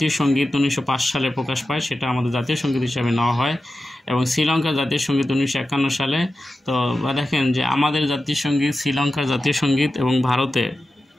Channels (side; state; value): both; normal; correlation 0.92